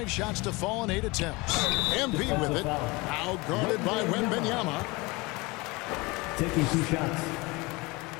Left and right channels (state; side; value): quieter; right; 24.5 dB